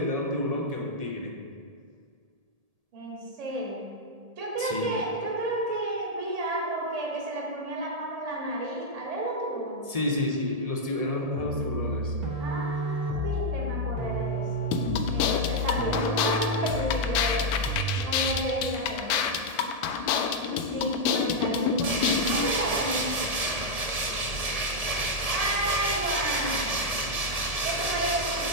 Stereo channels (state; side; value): late; left; 1.7 ms